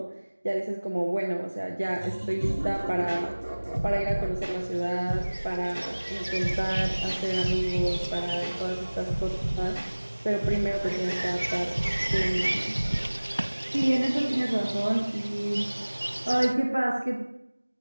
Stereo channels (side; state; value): both; inverted; correlation -1.00